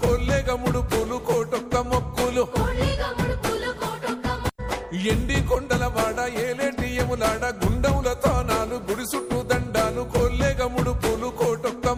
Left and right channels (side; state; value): both; identical; correlation 1.00